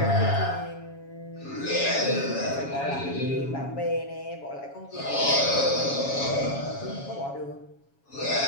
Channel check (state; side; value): late; right; 7.2 ms